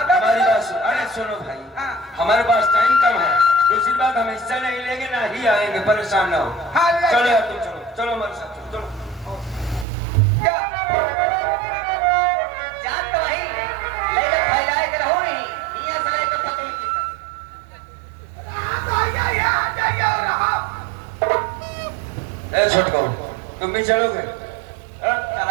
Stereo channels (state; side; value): drops out; left; at 9.9 s